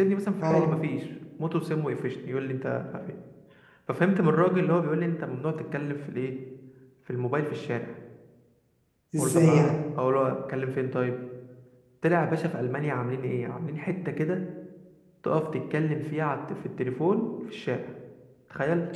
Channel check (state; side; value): identical; both; correlation 1.00